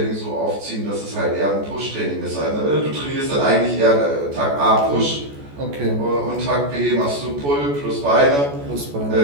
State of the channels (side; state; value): left; late; 14 ms